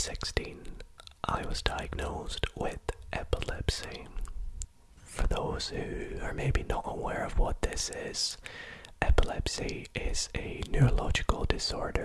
I was diagnosed with epilepsy. For those who are maybe not aware of what this is, epilepsy is a neurological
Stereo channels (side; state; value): both; identical; correlation 1.00